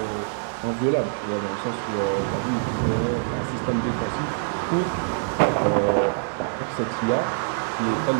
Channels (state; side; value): silent; left; 57 dB below the other